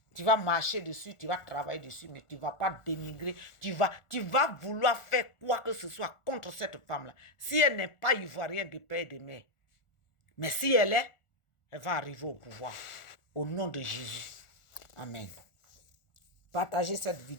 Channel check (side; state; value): right; late; 1.4 ms